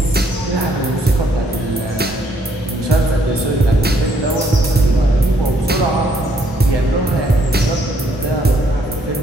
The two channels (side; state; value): both; normal; correlation 0.68